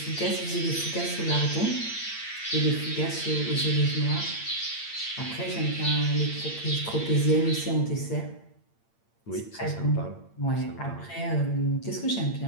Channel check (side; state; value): right; late; 8.8 ms